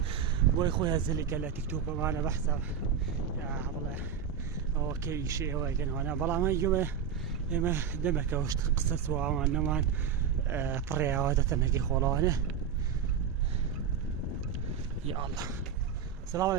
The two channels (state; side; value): quieter; left; 7.6 dB